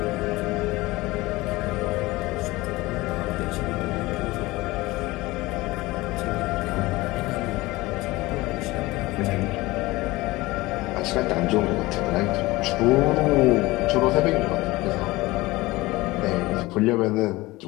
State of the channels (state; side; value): quieter; right; 20.2 dB